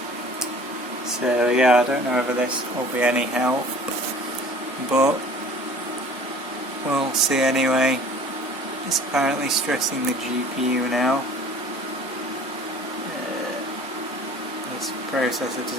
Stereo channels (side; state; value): both; normal; correlation 0.48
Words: So yeah, I don't know whether this will be any help, but we'll see anyway. It's apparently stressing the GPU now. This processor